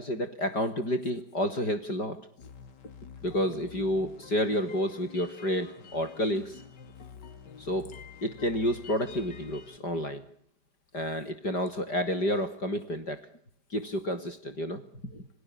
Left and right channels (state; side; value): late; right; 5.0 ms